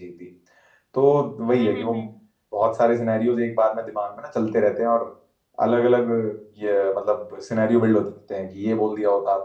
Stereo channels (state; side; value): identical; both; correlation 1.00